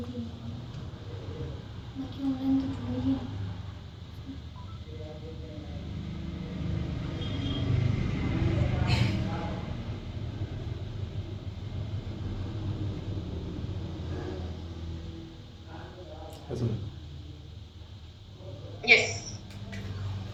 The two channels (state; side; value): identical; both; correlation 1.00